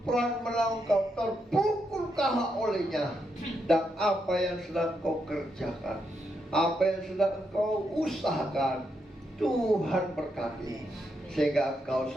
melawan kau, terpukul kalah olehnya. Dan apa yang sedang kau kerjakan, apa yang sedang engkau usahakan, Tuhan berkati, sehingga engkau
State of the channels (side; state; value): both; normal; correlation 0.81